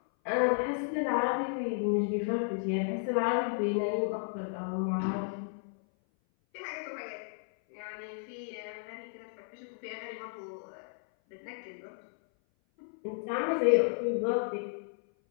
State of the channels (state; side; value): silent; right; 56 dB below the other